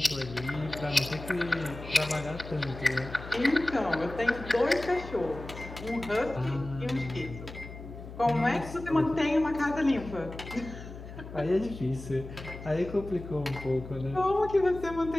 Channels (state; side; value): noise; left; hum, 12 dB below the sound